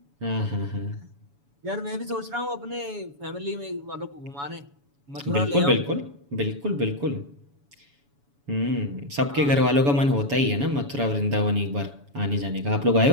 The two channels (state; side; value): late; left; 7.1 ms